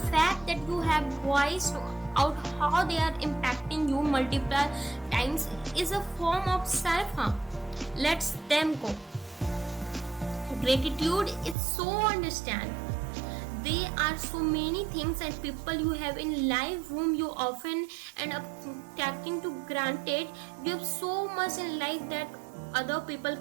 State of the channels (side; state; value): left; drops out; at 11.6 s